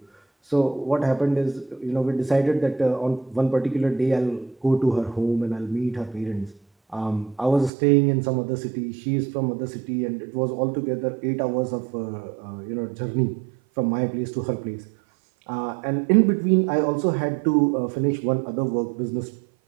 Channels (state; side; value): drops out; left; at 7.7 s